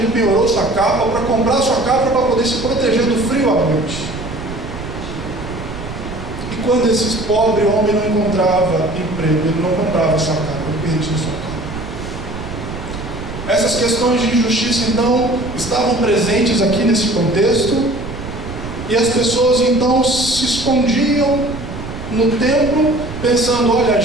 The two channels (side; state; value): right; noise; rumble, 10 dB below the sound